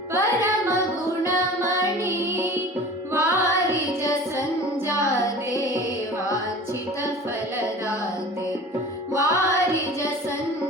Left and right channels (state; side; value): normal; both; correlation 0.40